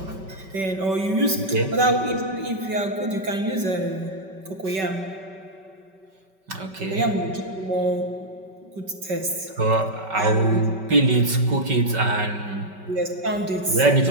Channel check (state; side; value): late; left; 5.2 ms